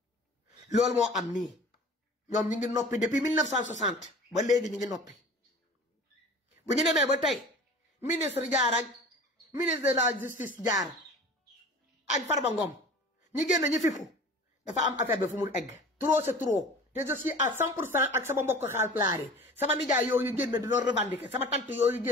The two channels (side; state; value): both; normal; correlation 0.41